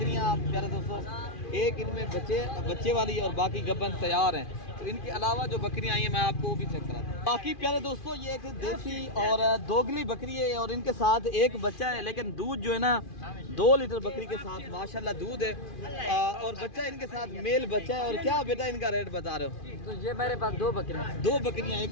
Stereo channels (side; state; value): right; late; 2.4 ms